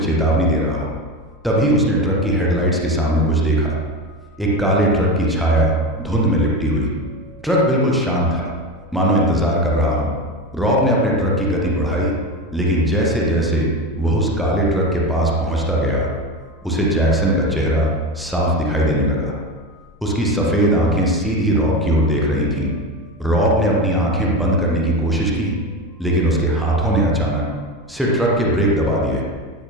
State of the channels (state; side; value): normal; both; correlation 0.21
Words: चेतावनी दे रहा हो। तभी उसने ट्रक की हेडलाइट्स के सामने कुछ देखा। एक काले ट्रक की छाया धुंध में लिपटी हुई। ट्रक बिल्कुल शांत था, मानो इंतजार कर रहा हो। रॉब ने अपने ट्रक की गति बढ़ाई, लेकिन जैसे जैसे वह उस काले ट्रक के पास पहुंचता गया, उसे जैक्सन का चेहरा साफ दिखाई देने लगा। उसकी सफेद आंखें सीधी रॉब की ओर देख रही थीं। रॉब ने अपनी आंखें बंद करने की कोशिश की, लेकिन उसके हाथों ने अचानक से ट्रक के ब्रेक दबा दिए।